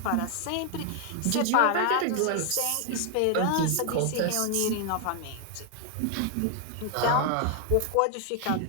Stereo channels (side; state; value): both; different; correlation 0.00